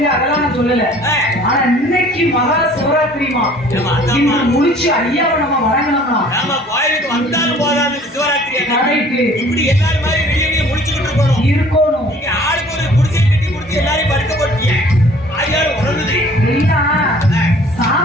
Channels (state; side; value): normal; both; correlation 0.52